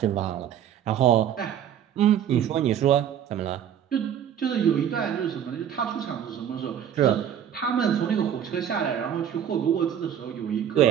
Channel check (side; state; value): left; quieter; 9.4 dB